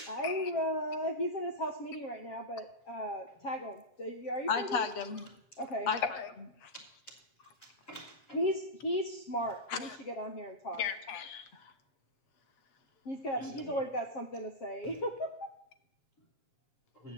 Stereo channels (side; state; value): right; late; 7.5 ms